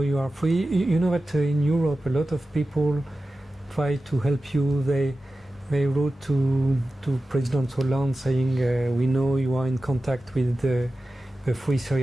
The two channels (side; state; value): both; normal; correlation 0.94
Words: you are free. You know that in Europe a lot of people try to help you. They wrote to President Hollande saying, we know you are in contact with the Free